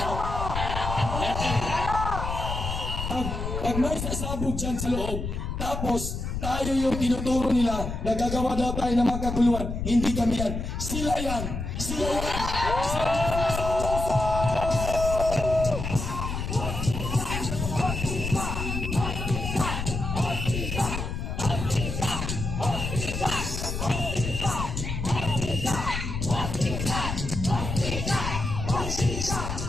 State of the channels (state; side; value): noise; left; rumble, 4 dB below the sound